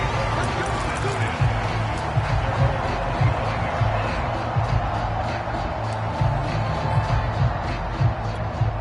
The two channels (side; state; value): both; identical; correlation 1.00